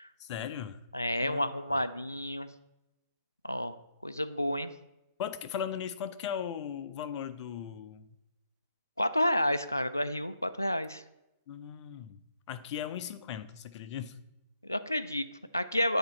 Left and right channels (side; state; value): both; inverted; correlation -0.79